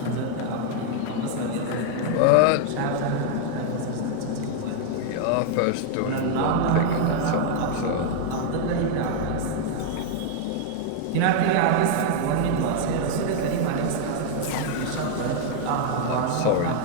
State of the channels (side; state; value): both; different; correlation 0.00